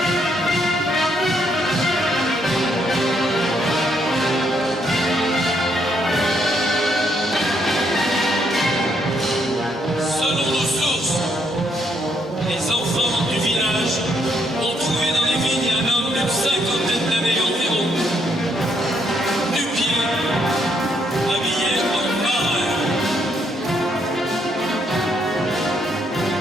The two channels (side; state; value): both; normal; correlation 0.73